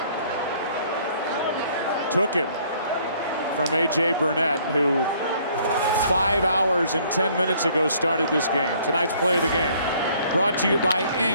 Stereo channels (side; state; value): both; inverted; correlation -0.60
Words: took it from A.J. Burnett, who 5 hours and 10 minutes ago started this game. Tonight's play of the game brought to you by